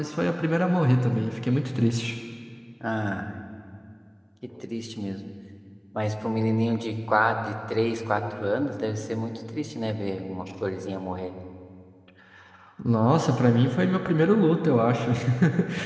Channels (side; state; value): both; identical; correlation 1.00